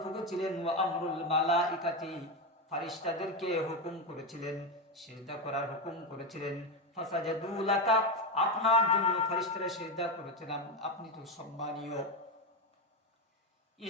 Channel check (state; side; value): normal; both; correlation 0.12